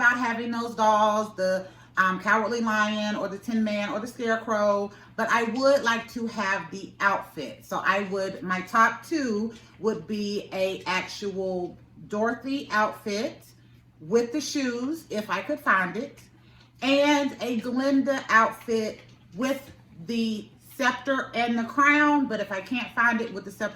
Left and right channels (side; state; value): both; identical; correlation 1.00